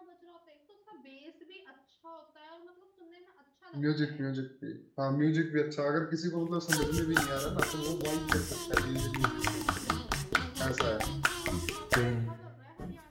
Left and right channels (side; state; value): both; identical; correlation 1.00